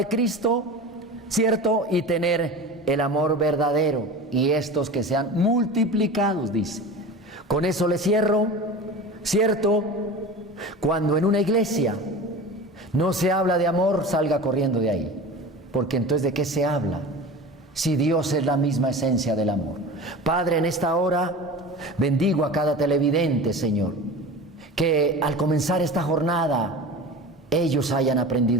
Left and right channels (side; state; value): both; normal; correlation 0.33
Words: Cristo, ¿cierto? Y tener el amor verdadero, y estos que sean multiplicados, dice. Con eso le cierro, ¿cierto? Cuando en una iglesia no se habla de amor, salga corriendo de ahí, porque entonces ¿de qué se habla? Si Dios es la misma esencia del amor. Padre, en esta hora bendigo a cada televidente, Señor, que al comenzar esta jornada ellos hayan